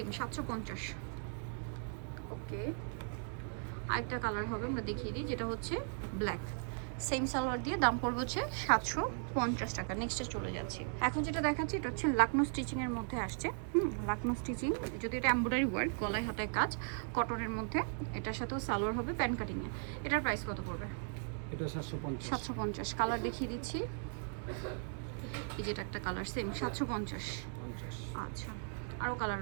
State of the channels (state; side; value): silent; left; 53 dB below the other